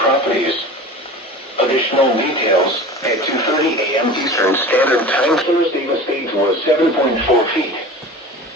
Additional details at 2:30 a.m. Eastern Standard Time. Thursday, the stage was 7.4 feet.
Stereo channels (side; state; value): both; normal; correlation 0.36